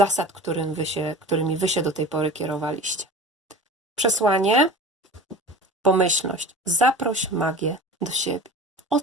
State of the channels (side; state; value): both; normal; correlation 0.37